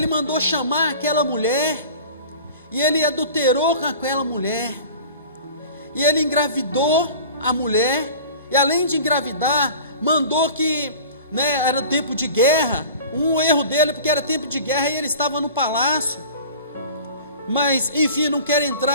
mandou chamar aquela mulher, e ele adulterou com aquela mulher, e ele engravidou a mulher, e além de engravidar, mandou que, né, era tempo de guerra. Um erro dele, porque era tempo de guerra e ele estava no palácio. Mas, enfim, não quero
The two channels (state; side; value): inverted; both; correlation -0.40